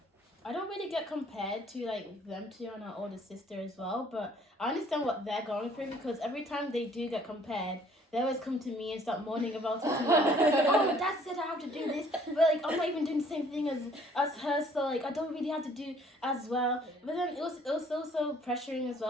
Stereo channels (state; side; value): normal; both; correlation 0.59